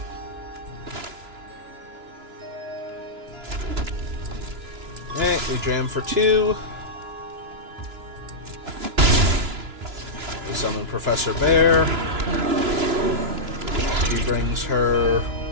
Okay, we jam for 2. We summon Professor Bear. She brings her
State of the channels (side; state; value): left; late; 2.9 ms